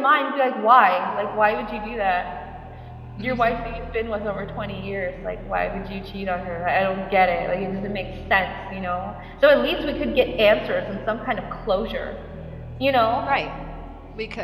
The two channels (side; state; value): both; identical; correlation 1.00